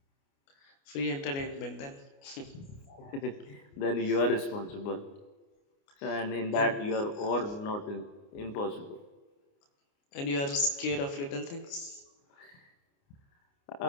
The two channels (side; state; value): right; late; 29 ms